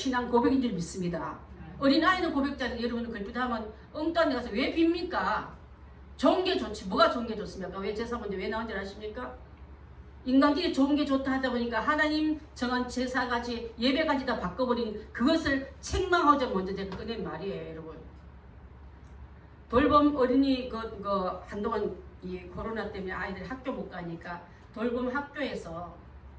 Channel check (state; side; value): identical; both; correlation 1.00